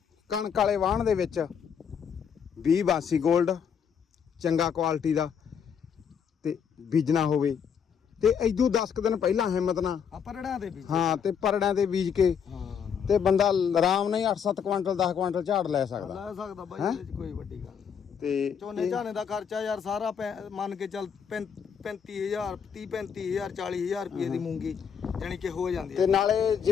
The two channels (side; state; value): right; quieter; 7.3 dB